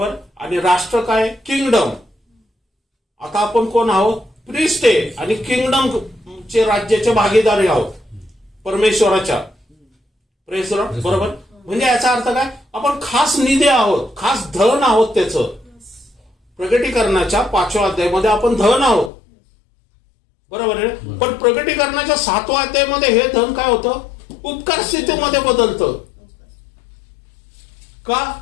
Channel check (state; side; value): drops out; right; at 19.1 s